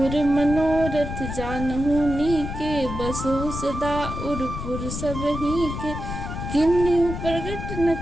मनोरथ जानहु नीके, बसहु सदा उरपुर सब ही के, किन्हु प्रगट न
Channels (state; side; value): noise; left; rumble, 6 dB below the sound